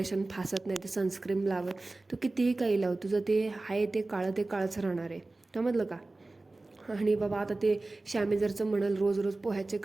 फासत, नाही तर सनस्क्रीम लावत. तू कितीही काही लाव, तुझं ते आहे ते काळच राहणार आहे. समजलं का? आणि बाबा आता ते शॅमेजरचं म्हणाल रोज पोह्याचे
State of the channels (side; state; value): left; quieter; 3.1 dB